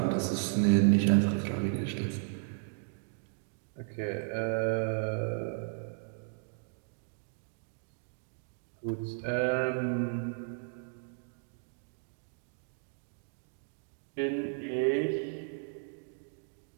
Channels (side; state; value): left; silent; digital silence